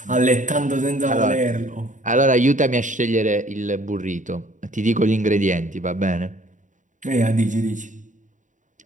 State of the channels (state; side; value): late; left; 0.36 ms